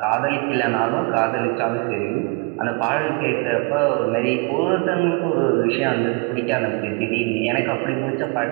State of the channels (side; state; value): left; quieter; 30.1 dB